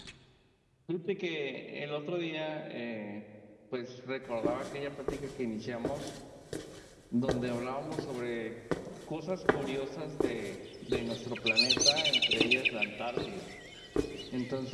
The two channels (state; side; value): identical; both; correlation 1.00